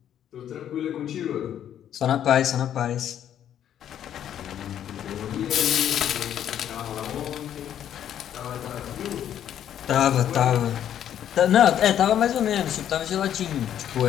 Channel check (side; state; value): right; quieter; 10.2 dB